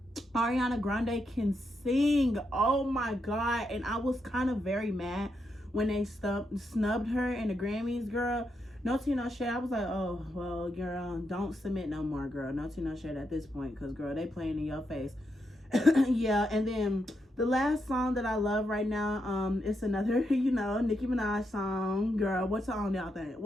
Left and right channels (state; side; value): normal; both; correlation 0.82